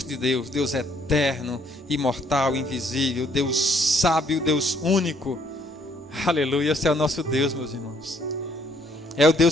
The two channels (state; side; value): normal; both; correlation 0.66